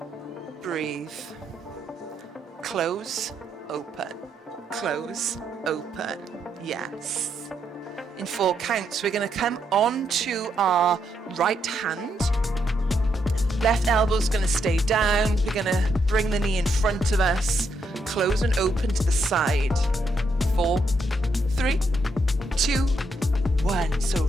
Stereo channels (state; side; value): normal; both; correlation 0.78